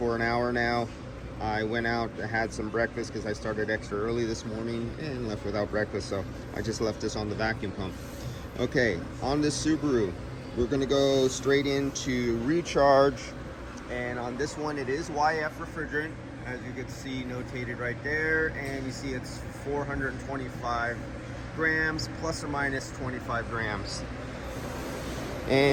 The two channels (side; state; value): both; identical; correlation 1.00